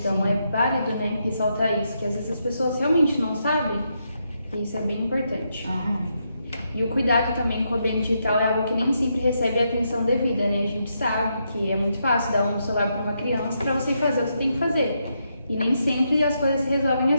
é válido, ressaltar isso, que às vezes as pessoas realmente não sabem, e isso é bem importante. E o cuidado também com o ambiente digital é algo que nem sempre recebe a atenção devida, A gente sabe que é muito fácil dar um celular para uma criança para você fazer o que você tem que fazer. E nem sempre as coisas se resolvem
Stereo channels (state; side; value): inverted; both; correlation -0.80